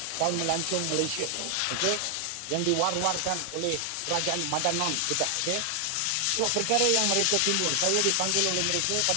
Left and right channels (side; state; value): both; different; correlation 0.00